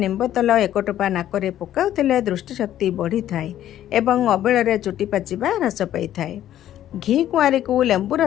ନିମ୍ବ ତେଲ 1 ଟୋପା ନାକରେ ପକାଉଥିଲେ ଦୃଷ୍ଟିଶକ୍ତି ବଢ଼ିଥାଏ ଏବଂ ଅବେଳରେ ଚୁଟି ପାଚିବା ହ୍ରାସ ପାଇଥାଏ। ଘି କୁଆଁରୀକୁ ଲେମ୍ବୁ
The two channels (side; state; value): right; quieter; 12.0 dB